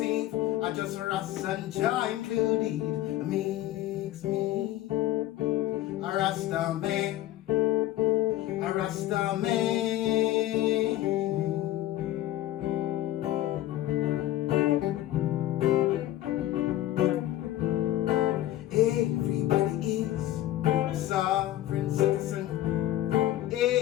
I just Rasta and Jah included. Makes me a Rasta man. A Rasta man. Everybody is a sovereign citizen.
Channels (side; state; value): right; quieter; 14.3 dB